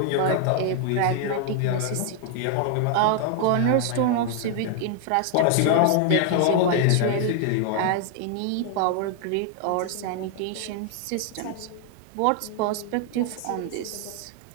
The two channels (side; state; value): both; different; correlation 0.00